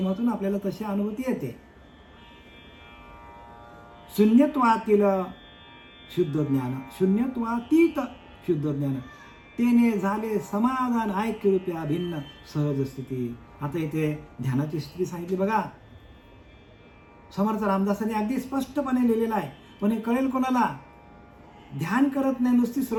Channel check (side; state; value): both; identical; correlation 1.00